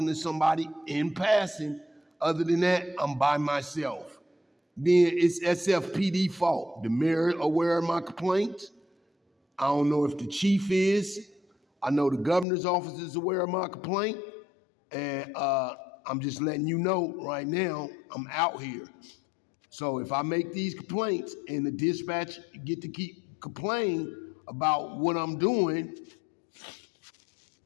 to somebody in passing. Other than that, I'm by myself. Then it's SFPD fault. The mayor aware of my complaints. I don't know if the chief is. I know the governor's office is aware of my complaint. And I'm just letting you know right now, I'm out here. So if I make these complaints and the dispatch get to keep complaining about what I'm doing,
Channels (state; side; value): drops out; right; at 12.5 s